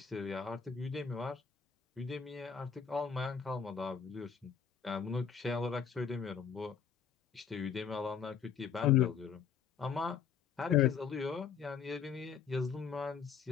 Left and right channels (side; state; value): right; quieter; 7.0 dB